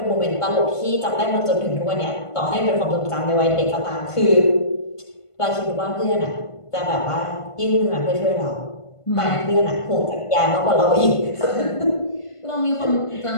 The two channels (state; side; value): late; right; 1.5 ms